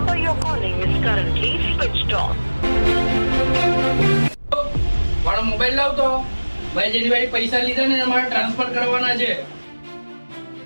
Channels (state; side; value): inverted; both; correlation -1.00